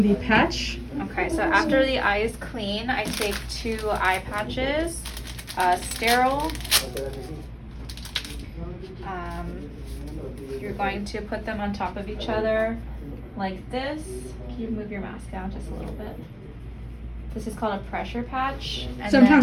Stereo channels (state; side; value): identical; both; correlation 1.00